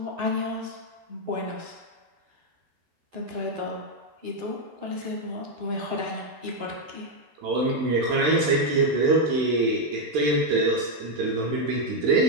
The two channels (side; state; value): left; late; 13 ms